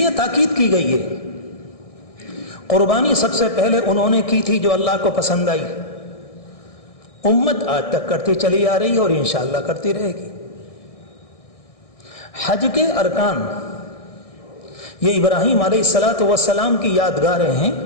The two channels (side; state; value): right; late; 1.6 ms